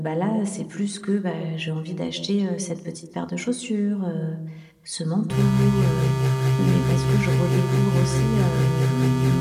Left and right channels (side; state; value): both; identical; correlation 1.00